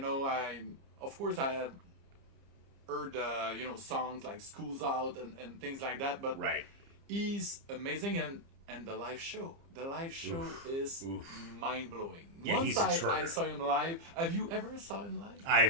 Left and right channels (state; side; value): late; left; 30 ms